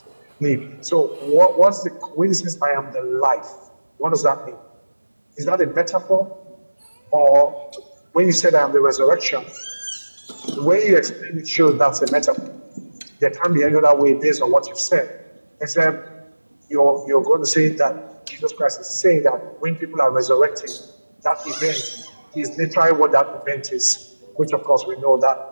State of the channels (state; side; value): inverted; both; correlation -1.00